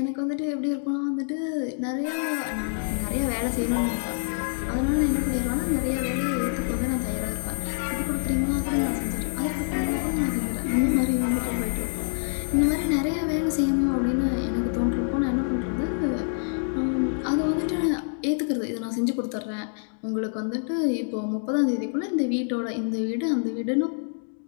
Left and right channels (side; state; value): right; silent; digital silence